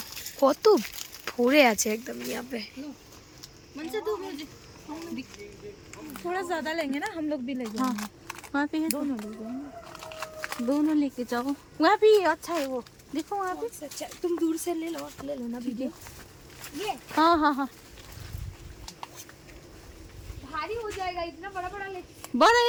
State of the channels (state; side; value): identical; both; correlation 1.00